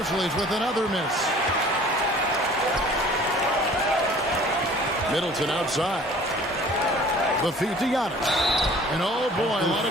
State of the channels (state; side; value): normal; both; correlation 0.50